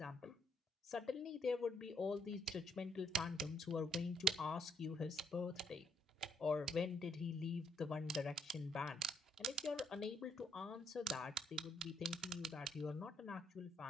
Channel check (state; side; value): normal; both; correlation 0.72